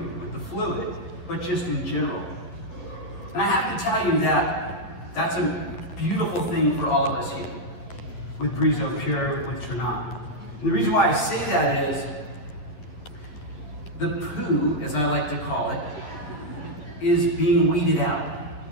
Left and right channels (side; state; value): right; late; 11 ms